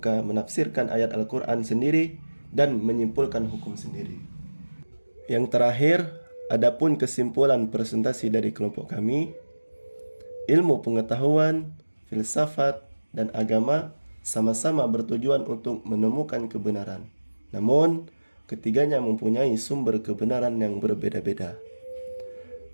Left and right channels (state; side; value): inverted; both; correlation -1.00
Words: menafsirkan ayat Al-Quran sendiri dan menyimpulkan hukum sendiri. Yang terakhir, adapun kesimpulan presentasi dari kelompok kami, ilmu pengetahuan, filsafat, dan agama sama-sama bertujuan untuk menemukan kebenaran. Namun, ketiganya mempunyai sumber kebenaran yang berbeda-beda.